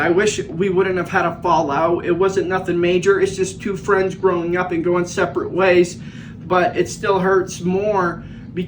wish we wouldn't have had a fallout. It wasn't nothing major. It's just two friends growing up and going separate ways, but it still hurts more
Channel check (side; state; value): both; identical; correlation 1.00